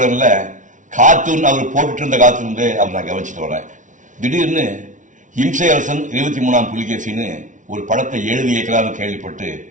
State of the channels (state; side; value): late; left; 0.37 ms